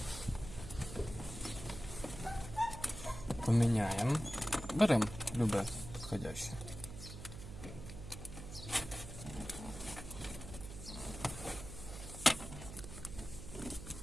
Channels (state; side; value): noise; right; hum, 11 dB below the sound